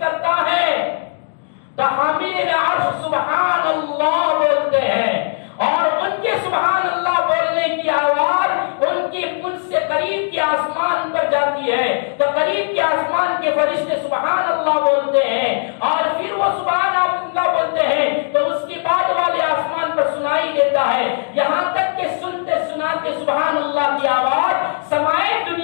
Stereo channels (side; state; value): right; silent; digital silence